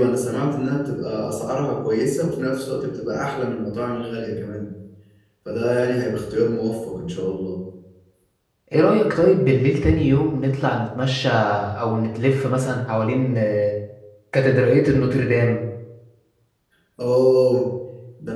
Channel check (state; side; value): identical; both; correlation 1.00